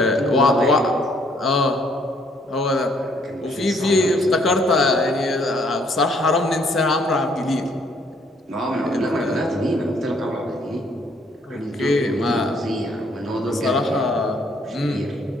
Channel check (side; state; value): both; normal; correlation 0.65